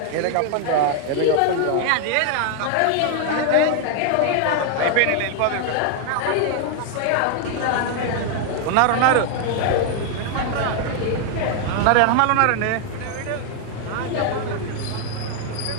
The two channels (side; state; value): both; different; correlation 0.00